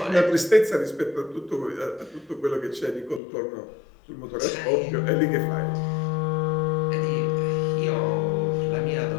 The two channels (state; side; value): drops out; right; at 3.2 s